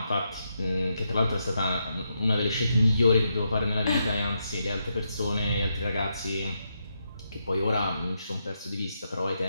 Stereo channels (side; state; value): both; inverted; correlation -0.82